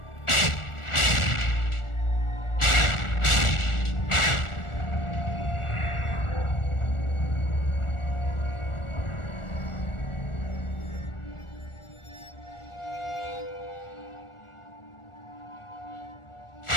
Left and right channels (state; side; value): late; right; 1.4 ms